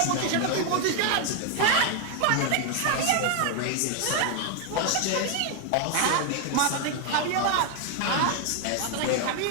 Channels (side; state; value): both; different; correlation 0.00